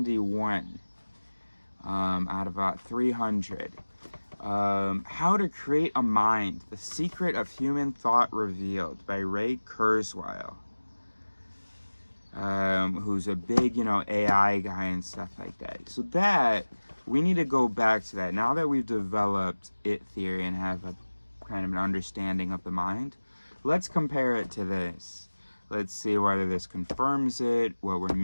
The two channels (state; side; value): inverted; both; correlation -1.00